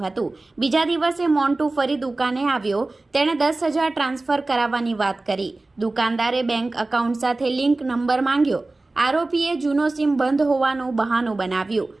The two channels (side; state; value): left; quieter; 3.1 dB